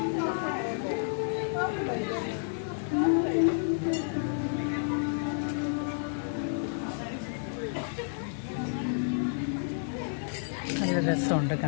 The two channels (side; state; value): right; silent; digital silence